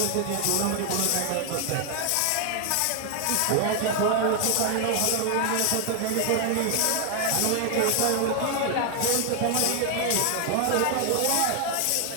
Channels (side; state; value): both; different; correlation 0.00